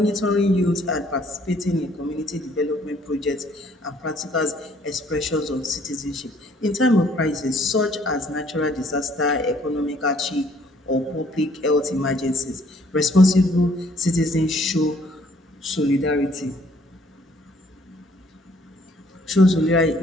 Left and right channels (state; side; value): normal; both; correlation 0.62